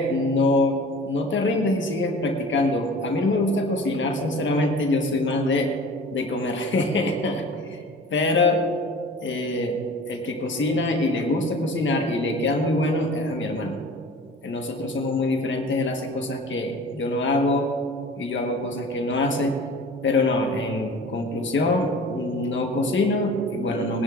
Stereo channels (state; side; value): normal; both; correlation 0.42